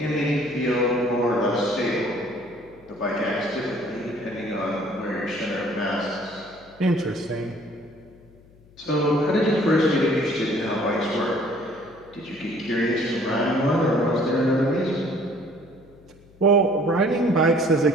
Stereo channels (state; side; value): noise; left; hum, 26 dB below the sound